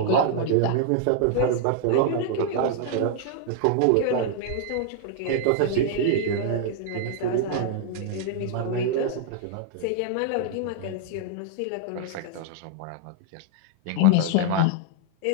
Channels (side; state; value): both; different; correlation 0.00